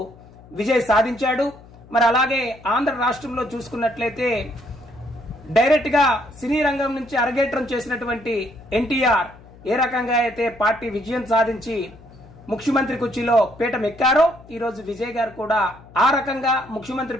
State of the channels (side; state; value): left; noise; hum, 22 dB below the sound